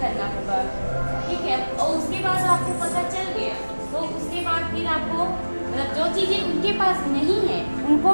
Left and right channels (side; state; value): both; inverted; correlation -1.00